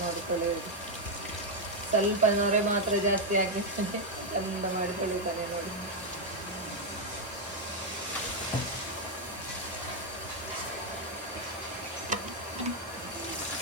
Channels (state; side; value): normal; both; correlation 0.01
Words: ನೋಡಿ ತೊಳೆಯೋದು. ಸ್ವಲ್ಪ ನೊರೆ ಮಾತ್ರ ಜಾಸ್ತಿ ಆಗಿರ್ತಾನೆ, ಚಂದ ಮಾಡಿ ತೊಳಿತಾನೆ ನೋಡಿ.